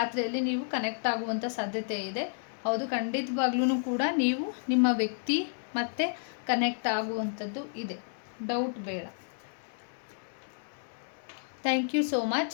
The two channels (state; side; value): silent; right; 57 dB below the other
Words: ನೀವು ಕನೆಕ್ಟ್ ಆಗುವಂಥ ಸಾಧ್ಯತೆ ಇದೆ. ಹೌದು, ಖಂಡಿತವಾಗ್ಲೂ ಕೂಡ ನೀವು ನಿಮ್ಮ ವ್ಯಕ್ತಿ ಮತ್ತು ಕನೆಕ್ಟ್ ಆಗುವಂಥದ್ದು ಇದೆ, ಡೌಟ್ ಬೇಡ. Thank you so